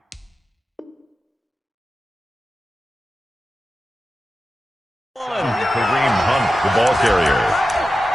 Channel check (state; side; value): normal; both; correlation 0.93